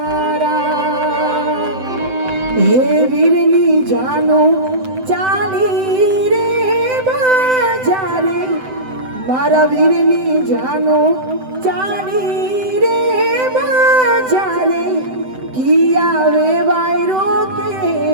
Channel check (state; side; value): late; left; 7.8 ms